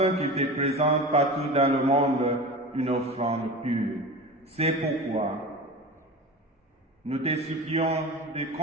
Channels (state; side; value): normal; both; correlation 0.31